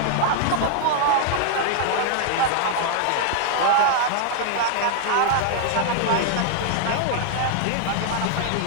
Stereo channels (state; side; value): different; both; correlation -0.01